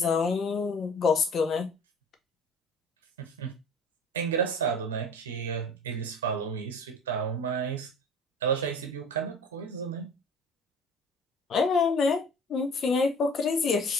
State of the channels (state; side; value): normal; both; correlation 0.44